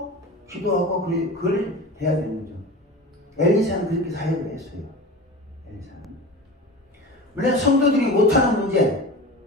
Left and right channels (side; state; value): both; normal; correlation 0.32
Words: 기도하고 그걸 해야 되는 거죠. 엘리사는 그렇게 사역을 했어요. 엘리사는. 물론 성도들이 못하는 문제,